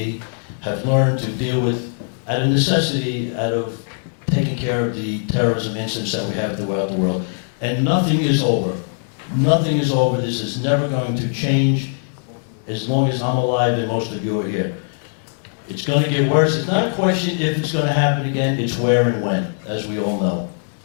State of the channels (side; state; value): right; silent; digital silence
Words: have learned to deal with, out of necessity, out of taking care of the terrorism incidents that we have throughout the world. And nothing is over. Nothing is over. This is never going to change as long as I'm alive and most of you are here. It's going to get worse. It's not a question if it's going to happen again, it's where and when, as we all know.